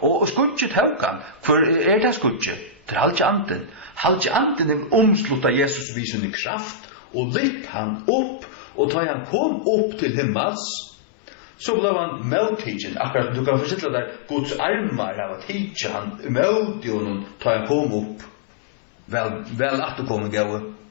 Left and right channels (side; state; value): right; drops out; at 5.9 s